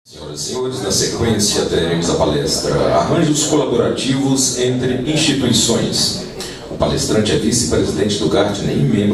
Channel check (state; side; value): identical; both; correlation 1.00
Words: Senhoras e senhores, na sequência teremos a palestra Arranjos Colaborativos entre Instituições. O palestrante é vice-presidente do Gartner e